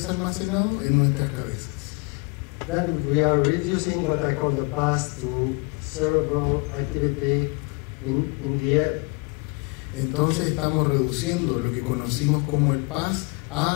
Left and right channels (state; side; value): quieter; right; 30.4 dB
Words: almacenado? En nuestras cabezas. Then we are reducing what I call the past to cerebral activity in the air. Entonces estamos reduciendo lo que conocimos como el paz